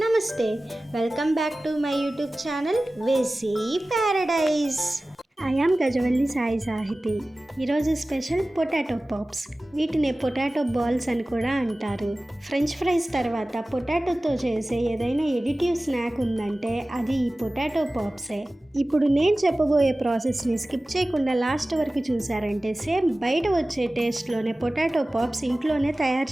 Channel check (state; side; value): normal; both; correlation 0.97